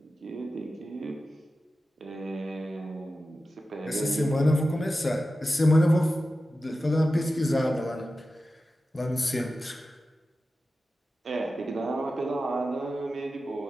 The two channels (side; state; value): both; normal; correlation 0.93